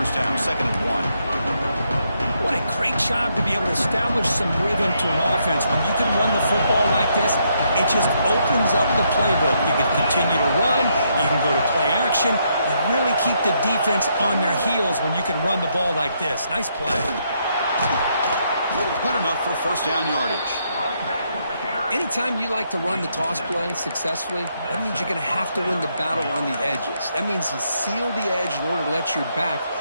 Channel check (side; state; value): both; inverted; correlation -0.76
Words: down, 2nd and 1. What a great job to be able to establish some rhythm to an offense. When you can run the football like this, it just opens up the playbook. You can continue to run, you can go to play action. You really keep the defense on their heels when you can run the ball like this. Nice play. Good enough for 1st down yardage. Anytime you like to run the toss play successfully, that means you're going to have to win the battle on the edges. That means you seal the edge in order to let your back